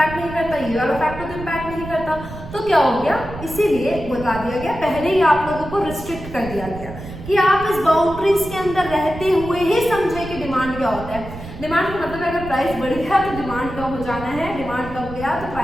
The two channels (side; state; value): right; noise; rumble, 12 dB below the sound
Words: नहीं करता, ये वाला फैक्टर तो इम्पैक्ट नहीं करता, तो क्या हो गया, इसीलिए बता दिया गया, पहले ही आप लोगों को रिस्ट्रिक्ट कर दिया गया कि आप इस बाउंड्रीज के अंदर रहते हुए ही समझे कि डिमांड क्या होता है। डिमांड का मतलब अगर प्राइस बढ़ गया तो डिमांड कम हो जाना है, डिमांड कम गया तो